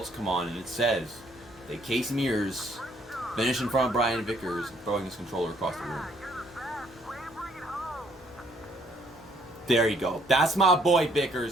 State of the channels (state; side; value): normal; both; correlation 0.65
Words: come on and it says that Casey Mears finished in front of Brian Vickers throwing his controller across the room. There you go. That's my boy